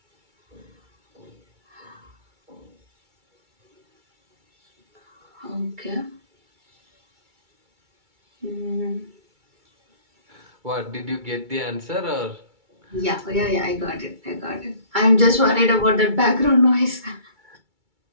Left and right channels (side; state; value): left; late; 2.3 ms